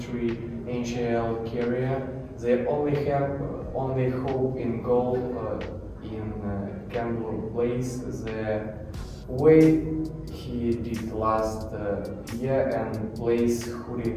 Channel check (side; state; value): both; identical; correlation 1.00